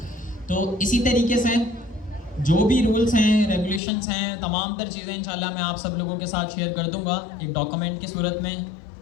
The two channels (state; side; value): drops out; right; at 3.8 s